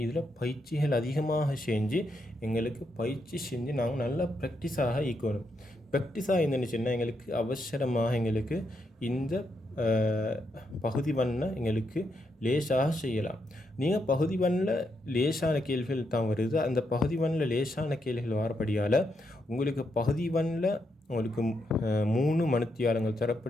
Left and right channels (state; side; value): normal; both; correlation 0.80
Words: இதில் பயிற்சிகள் அதிகமாக செஞ்சு பயிற்சி செஞ்சு நாங்கள் நல்லா ப்ராக்டிஸாக ஈக்கணும். ப்ராக்டிஸாக இருந்துச்சுன்னா எங்களுக்கு அவசரமாக இந்த பகுதி வண்ண லேசாக செய்யலாம். நீங்கள் பகுதி வண்ணில் லேசான கேள்விகள் தான் வருது. அந்த பகுதி வண்ணில் லேசான கேள்விகள் வரப்படியால் பகுதி வண்ணில் 3 மணித்தியாலங்கள்